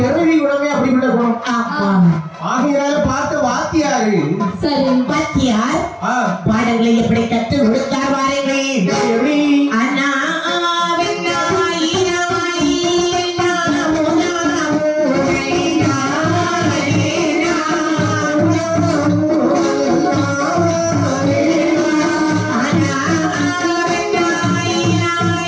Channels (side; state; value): both; identical; correlation 1.00